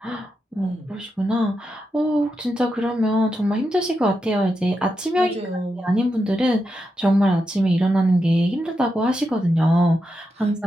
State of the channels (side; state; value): both; normal; correlation 0.86